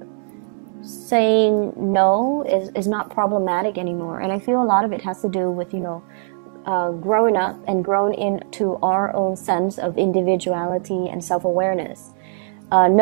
saying no is not problematic anymore. And I feel a lot of it has to do with, you know, growing up and growing into our own sense of individuality and self-awareness,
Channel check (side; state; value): left; silent; 65 dB below the other